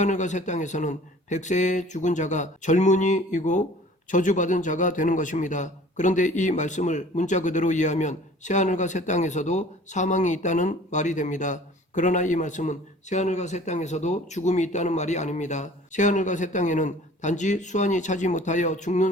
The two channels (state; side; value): normal; both; correlation 0.49